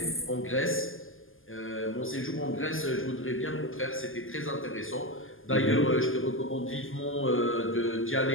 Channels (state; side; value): late; right; 0.59 ms